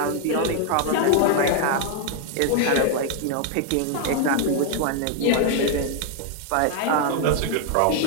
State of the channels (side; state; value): both; different; correlation 0.00